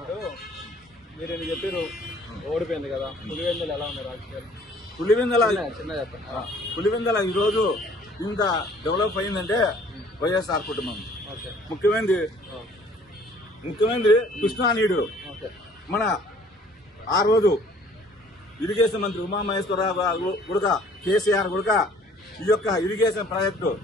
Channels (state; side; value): normal; both; correlation 0.55